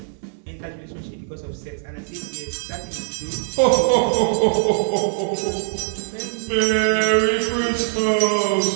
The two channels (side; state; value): left; silent; 64 dB below the other